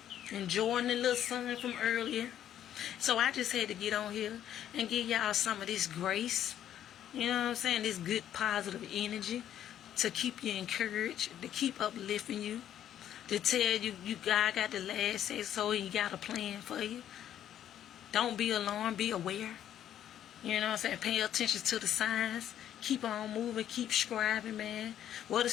Enjoying the little sun from earlier. So I just had to get on here and give y'all some of this grace. You know what I'm saying? This good positive energy to keep you encouraged, to keep uplifting you, to tell you God got the last say so and you got a plan for you. Don't be alarmed, be aware. You know what I'm saying? Pay attention to the signs. Keep on moving, keep striving, man. What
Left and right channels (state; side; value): quieter; right; 10.8 dB